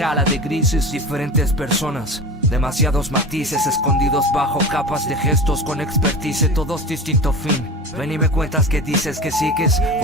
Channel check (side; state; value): both; normal; correlation 0.32